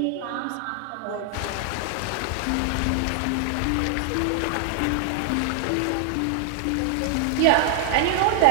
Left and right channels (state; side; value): different; both; correlation 0.00